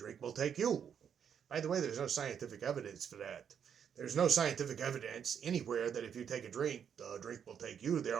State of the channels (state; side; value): quieter; left; 8.0 dB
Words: will take you. By the way, there's no scientific evidence for that. There's no scientific evidence anywhere that if you take a drink, the drink will take you. There